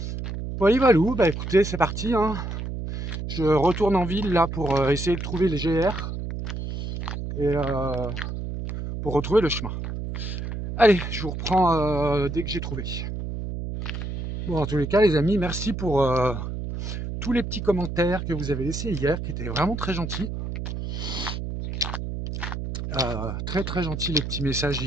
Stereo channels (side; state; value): right; noise; hum, 5 dB below the sound